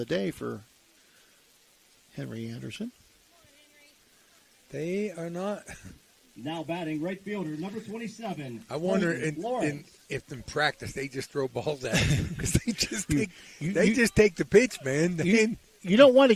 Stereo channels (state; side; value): identical; both; correlation 1.00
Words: day for Henry Anderson. They are not. Now batting right fielder, number 27. I wonder if in practice they just throw balls at him because they just take the pitch, man. You don't want to